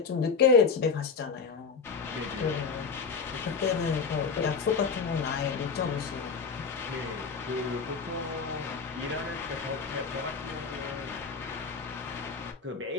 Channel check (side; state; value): right; quieter; 5.3 dB